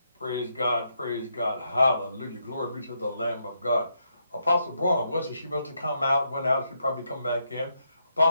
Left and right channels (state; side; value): inverted; both; correlation -0.80